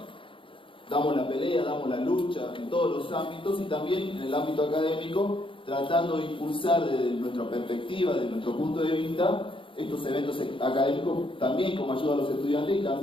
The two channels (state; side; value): late; right; 0.25 ms